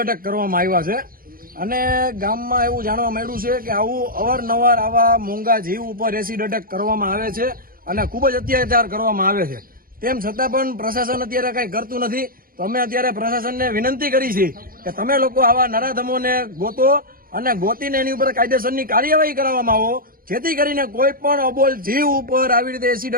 એટેક કરવામાં આવ્યા છે અને ગામમાં એવું જાણવા મળ્યું છે કે આવું અવારનવાર આવા મોંઘા જીવ ઉપર એસિડ એટેક કરવામાં આવે છે અને ખૂબ જ અત્યાચાર કરવામાં આવે છે। તેમ છતાં પણ પ્રશાસન અત્યારે કંઈ કરતું નથી। તો અમે અત્યારે પ્રશાસનને વિનંતી કરી છે કે તમે લોકો આવા નરાધમોને ગોતો અને ગોતીને એની ઉપર કાયદેસરની કાર્યવાહી કરવામાં આવો, જેથી કરીને કોઈ પણ અબોલ જીવ ઉપર આવી રીતે એસિડ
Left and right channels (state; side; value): late; left; 0.42 ms